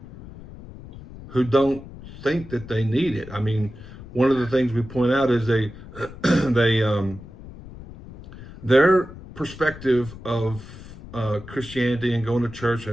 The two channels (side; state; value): left; noise; rumble, 16 dB below the sound